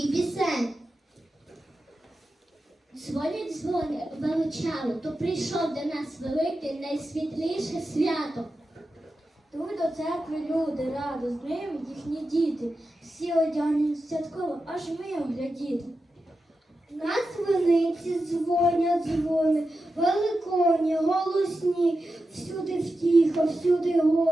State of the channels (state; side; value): normal; both; correlation 0.91